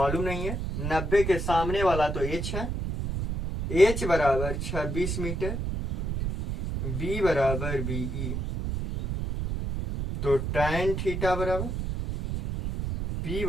नहीं है, 90 के सामने वाला तो एच है, एच बराबर 26 मीटर, बी बराबर बीई, तो tan थीटा बराबर पी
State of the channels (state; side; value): noise; right; rumble, 3 dB below the sound